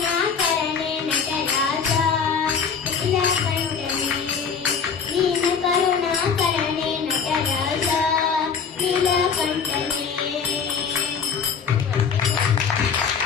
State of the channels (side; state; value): right; quieter; 6.3 dB